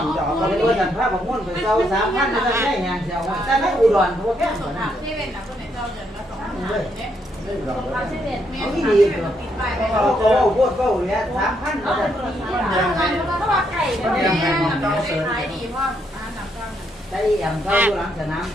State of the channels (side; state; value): both; normal; correlation 0.75